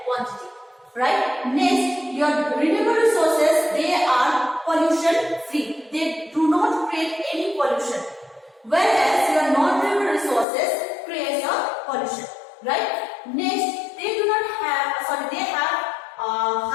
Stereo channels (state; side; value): drops out; right; at 10.5 s